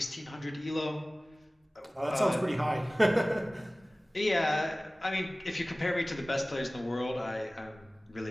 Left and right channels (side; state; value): both; normal; correlation 0.98